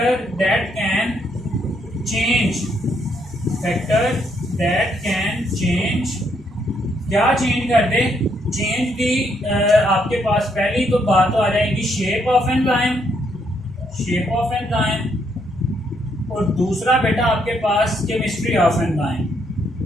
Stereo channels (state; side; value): normal; both; correlation 0.74